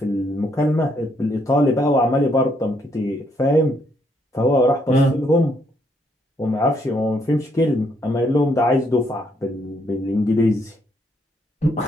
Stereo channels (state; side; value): normal; both; correlation 0.72